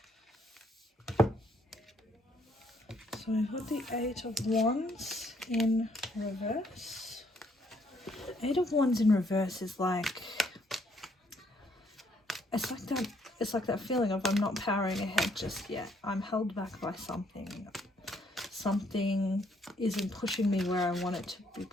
So we've got the Eight of Wands in reverse. Eight of Wands in reverse is like, it's like that feeling of I'm not powering ahead just yet. I'm held back by something. Something isn't pushing me where I want it to be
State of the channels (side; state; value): both; normal; correlation 0.68